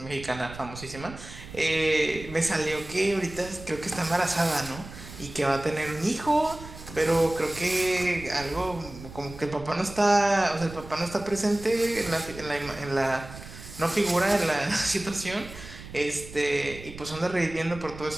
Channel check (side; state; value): right; noise; rumble, 14 dB below the sound